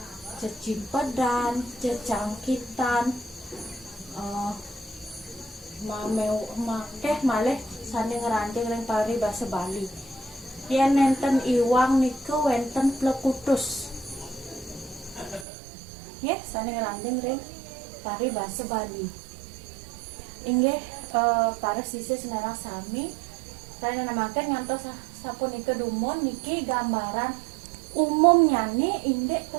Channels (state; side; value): drops out; left; at 15.5 s